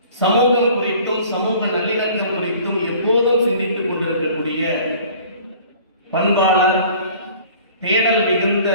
சமூகம் குறித்தும் சமூக நல்லிணக்கம் குறித்தும் எப்போதும் சிந்தித்துக் கொண்டிருக்கக்கூடிய பண்பாளர் தேடல் மிகுந்த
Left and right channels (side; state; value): both; inverted; correlation -0.49